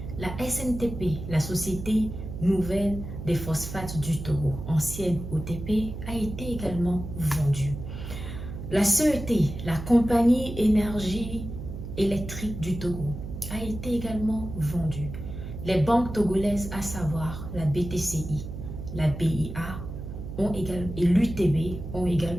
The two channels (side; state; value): right; noise; hum, 8 dB below the sound